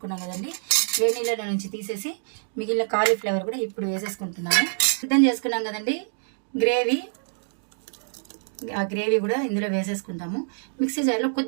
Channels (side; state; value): left; silent; digital silence